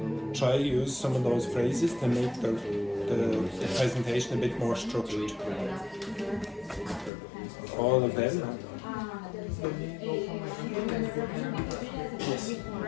Try use some of those phrases to make the presentation a bit more structured. All of them? Yes.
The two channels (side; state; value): right; drops out; at 7.1 s